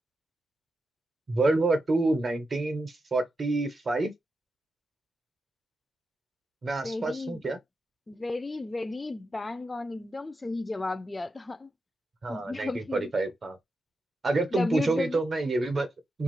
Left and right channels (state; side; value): normal; both; correlation 0.87